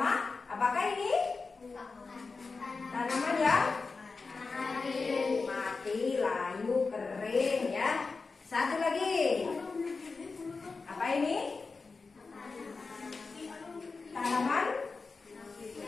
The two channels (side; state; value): right; quieter; 4.3 dB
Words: apakah ini? Tanaman yang mati, layu, kering ya. Satu lagi. Apa ini? Tanaman